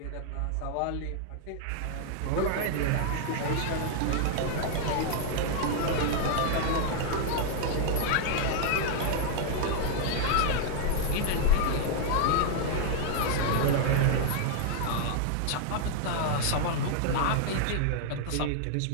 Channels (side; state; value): both; different; correlation 0.00